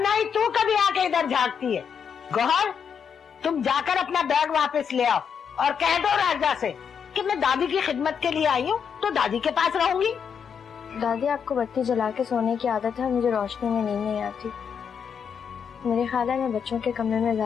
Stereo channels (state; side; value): quieter; right; 7.1 dB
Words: ही तू कभी आके इधर झांकती है। गौहर, तुम जाकर अपना बैग वापस ले आओ और कह दो राजा से कि मैं दादी की खिदमत के लिए आई हूँ तो दादी के पास रहूंगी। दादी, आपको बत्ती जला के सोने की आदत है, मुझे रोशनी में नींद नहीं आती। मेरे ख्याल है मैं बच्चों के कमरे में